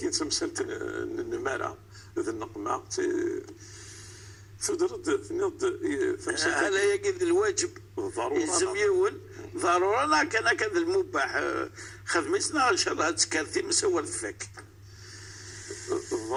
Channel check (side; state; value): both; identical; correlation 1.00